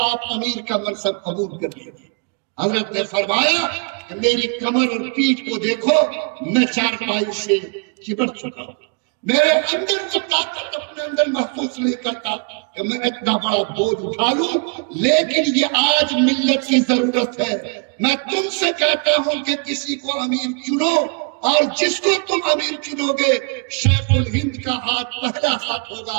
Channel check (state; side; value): quieter; left; 39.2 dB